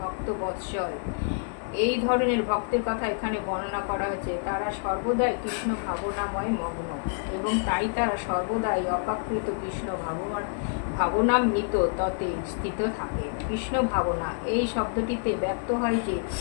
বৎসল। এই ধরনের ভক্তের কথা এখানে বর্ণনা করা হয়েছে। তারা সর্বদাই কৃষ্ণ ভাবনাময় মগ্ন, এবং তাই তারা সর্বদাই অপাকৃত কৃষ্ণ ভাবনামৃত ততে স্থিত থাকে। কৃষ্ণ ভাবনা এই শব্দটিতে ব্যক্ত হয় যে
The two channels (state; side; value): silent; right; 60 dB below the other